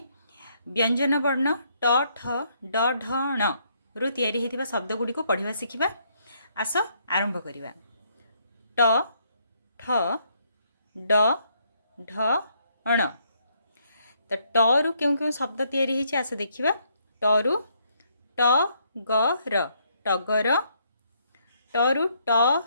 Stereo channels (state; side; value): inverted; both; correlation -0.71